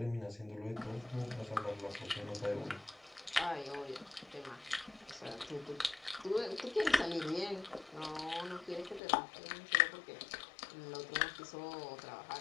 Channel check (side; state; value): right; drops out; at 9.0 s